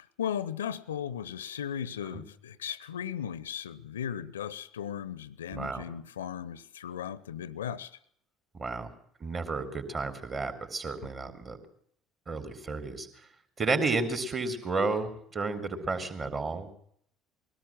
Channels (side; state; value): both; normal; correlation 0.39